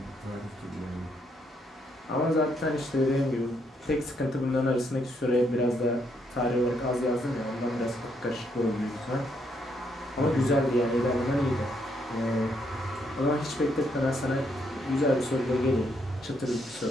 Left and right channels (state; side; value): normal; both; correlation 0.74